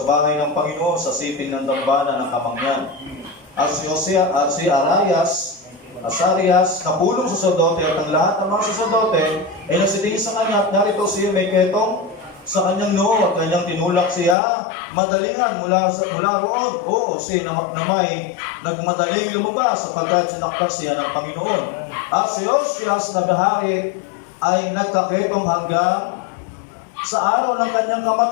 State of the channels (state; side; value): drops out; right; at 14.4 s